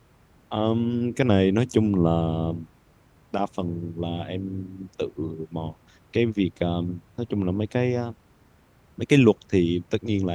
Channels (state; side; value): identical; both; correlation 1.00